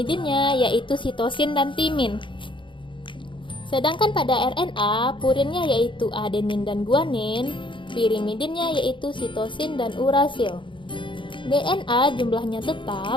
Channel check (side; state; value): right; late; 0.24 ms